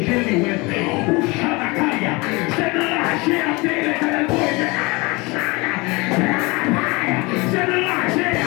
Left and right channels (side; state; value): right; quieter; 25.2 dB